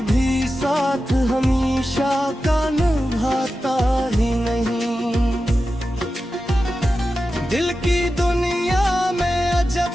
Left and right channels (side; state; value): both; normal; correlation 0.92